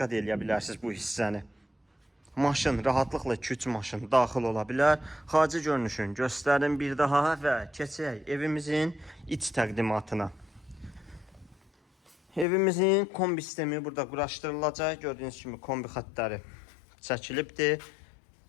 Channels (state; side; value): drops out; right; at 12.5 s